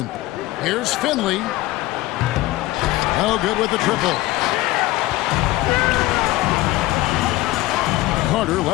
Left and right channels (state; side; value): quieter; right; 17.7 dB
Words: Here's Finley. No good with the triple. Carter